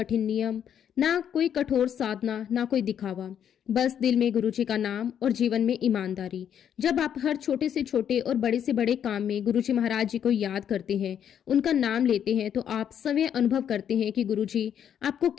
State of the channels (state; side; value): quieter; right; 9.0 dB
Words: नियम, ना कोई कठोर साधना, ना कोई दिखावा, बस दिल में गुरुजी का नाम और जीवन में ईमानदारी। जब आप हर छोटे से छोटे और बड़े से बड़े काम में गुरुजी महाराज जी को याद करते हैं, उनका नाम लेते हैं, तो आप स्वयं अनुभव करते हैं कि गुरुजी आपको